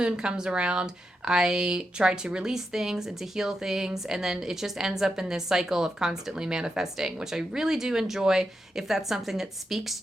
comes around, I try to release things and to heal things. And then it just ends up in this cycle of constantly manifesting, which I really do enjoy. If that's something that speaks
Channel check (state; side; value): normal; both; correlation 0.86